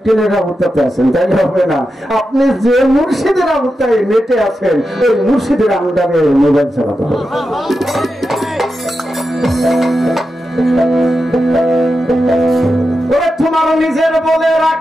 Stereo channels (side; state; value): both; normal; correlation 0.89